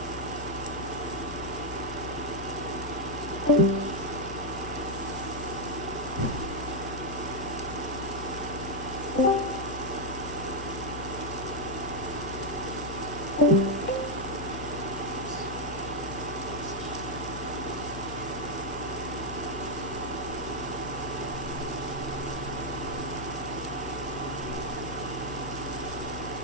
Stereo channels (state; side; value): noise; left; hum, 8 dB below the sound